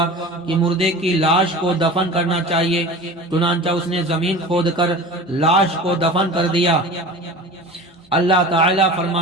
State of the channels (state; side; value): normal; both; correlation 0.36